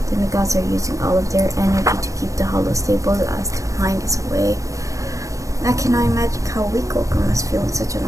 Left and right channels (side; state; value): left; late; 0.16 ms